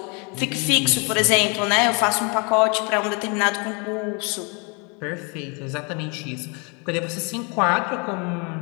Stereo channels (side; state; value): right; quieter; 32.8 dB